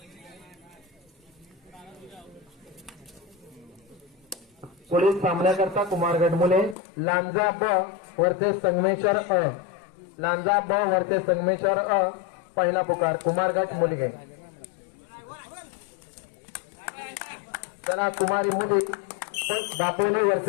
पुढील सामन्याकरता कुमारगड मुले लांजा ब वर्सेस संगमेश्वर लांजा ब वर्सेस संगमेश्वर पहिला पुकार कुमारगड मुली. चला कुमारी मुली दापोली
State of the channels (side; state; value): right; drops out; at 6.8 s